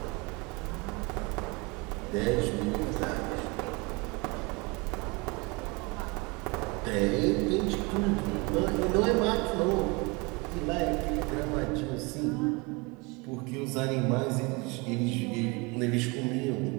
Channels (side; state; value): left; quieter; 27.4 dB